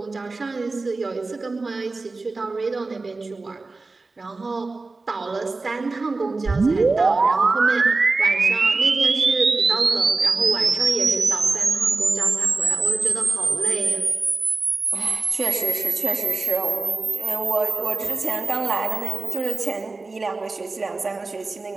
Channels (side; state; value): left; quieter; 3.6 dB